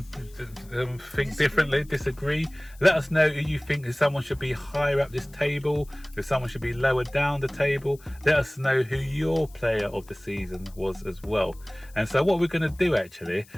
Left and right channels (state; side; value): noise; left; hiss, 26 dB below the sound